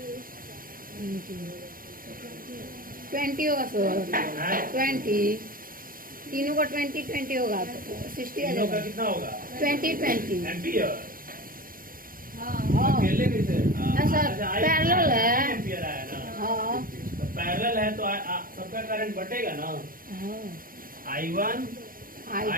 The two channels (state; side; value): late; left; 0.41 ms